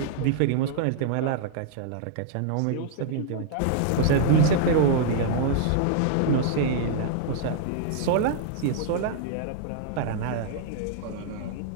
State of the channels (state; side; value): different; both; correlation -0.01